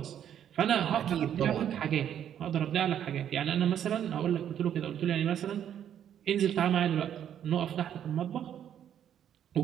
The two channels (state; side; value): quieter; left; 9.8 dB